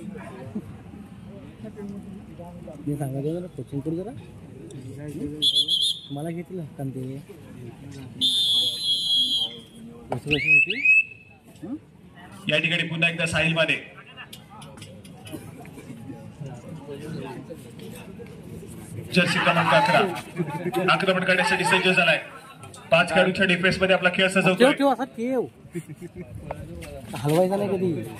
मी सांगायचं जरा कोचिंग करू जरा मला घेतलं कारण ते या ठिकाणी पुन्हा एकदा साहिल माने जर्सी क्रमांक 11 आक्रमण करण्यासाठी सज्ज झालाय. 5 खेळाडूंच्या डिफेन्स मध्ये आपला खेळ सजवतोय. हलवायचा नाही कधी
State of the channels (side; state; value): both; identical; correlation 1.00